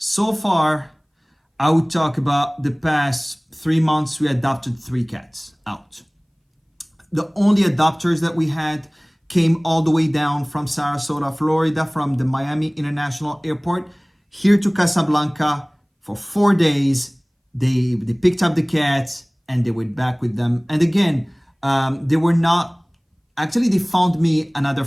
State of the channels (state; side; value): identical; both; correlation 1.00